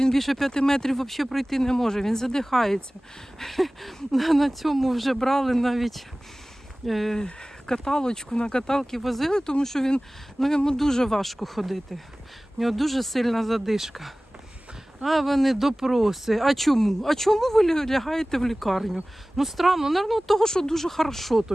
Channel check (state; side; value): normal; both; correlation 0.98